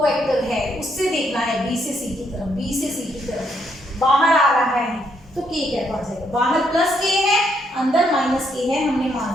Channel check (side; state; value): both; normal; correlation 0.74